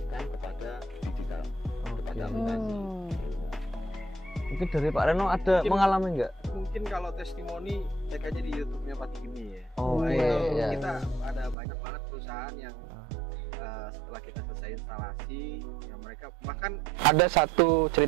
kepada digital, kepada aplikasi. Mungkin dari Pak Reno ada mengalami nggak? Mungkin kalau testimoni cek aja di YouTube-nya Pak Tigini ya. Oh iya. Kita ada banyak banget perusahaan yang setelah kita selesai instalasi, ya mereka bahkan ada satu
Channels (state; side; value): drops out; left; at 11.6 s